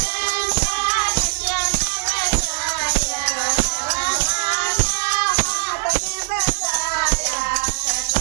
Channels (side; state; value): left; silent; 65 dB below the other